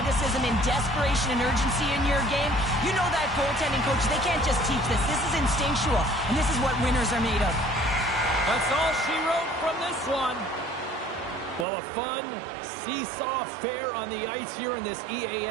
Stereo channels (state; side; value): drops out; left; at 11.7 s